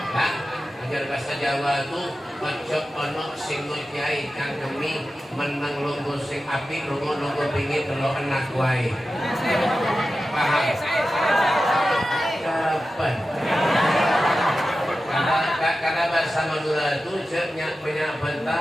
Nah, ajar bahasa Jawa itu ojo ono sing nyai kang demi meneng lungguh sing api lunga pingin telo enak wae. Paham? Kapan? Karena bahasa Madura itu punya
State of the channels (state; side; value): normal; both; correlation 0.93